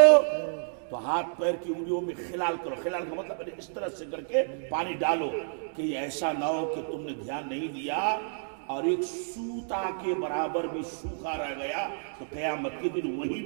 تو ہاتھ پیر کی انگلیوں میں خلال کرو. خلال کا مطلب ہے اس طرح سے کر کے پانی ڈالو کہ یہ ایسا نہ ہو کہ تم نے دھیان نہیں دیا اور ایک سوتا کے برابر بھی سوکھا رہ گیا تو قیامت کے دن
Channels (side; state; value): left; silent; digital silence